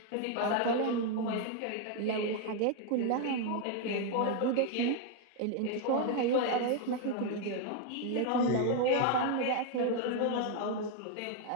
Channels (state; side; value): different; both; correlation 0.00